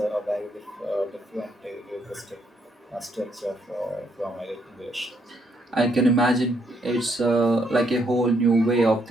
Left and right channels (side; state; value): both; normal; correlation 0.73